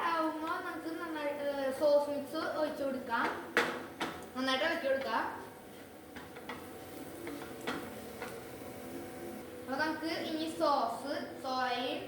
ആവുമ്പോൾ നമുക്ക് നന്നായിട്ട് സോസ് മിക്സ് ഒഴിച്ചു കൊടുക്കാം. നന്നായിട്ട് ഇളക്കി കൊടുക്കാം. അപ്പോൾ നമുക്ക് ഇനി സോയയും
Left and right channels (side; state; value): both; identical; correlation 1.00